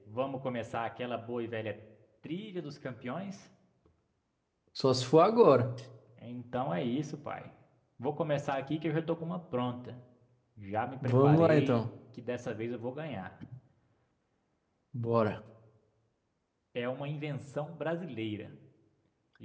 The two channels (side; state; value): both; identical; correlation 1.00